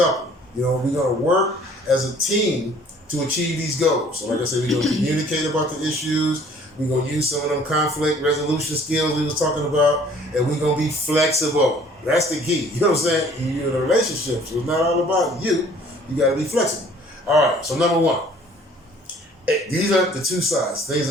We're going to work as a team to achieve these goals. So like I said, we're going to communicate about the issues. We're going to use some of them conflict resolution skills we was talking about, and we're going to be flexible. That's the key. You know what I'm saying? You're in a relationship, so it's not all about you. You got to be flexible. All right, so number one, these are the two sides. Things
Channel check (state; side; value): normal; both; correlation 0.55